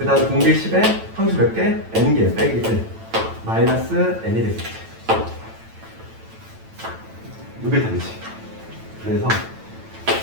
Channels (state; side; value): late; left; 9.0 ms